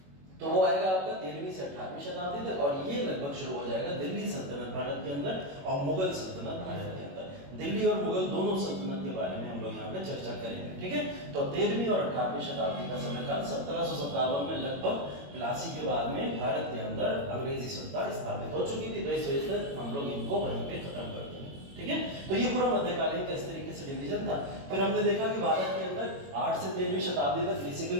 तो वो आएगा आपका 13वीं से 18वीं शताब्दी तक, और ये लगभग शुरू हो जाएगा दिल्ली सल्तनत भारत के अंदर और मुगल सल्तनत भारत के अंदर। दिल्ली और मुगल दोनों सल्तनत के बारे में हम लोग यहाँ पे चर्चा करेंगे, ठीक है। तो 13वीं और 18वीं शताब्दी का समयकाल 1757 में लगभग प्लासी के बाद में भारत के अंदर अंग्रेजी सत्ता स्थापित हो चुकी थी, तो इस वजह से हम लोग इनको वहीं पे खत्म कर देंगे, ठीक है। तो ये पूरा मध्यकालीन का इस तरीके से डिवीजन था। फिर हमने देखा कि भारत के अंदर 8 से 13वीं शताब्दी तक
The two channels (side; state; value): left; late; 21 ms